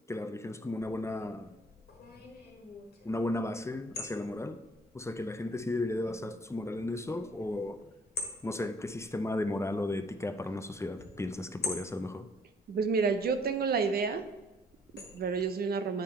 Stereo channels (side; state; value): both; normal; correlation 0.60